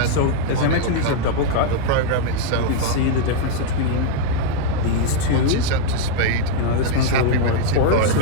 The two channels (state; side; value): different; both; correlation -0.01